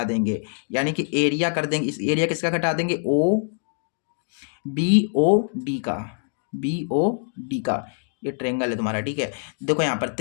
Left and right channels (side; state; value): right; silent; digital silence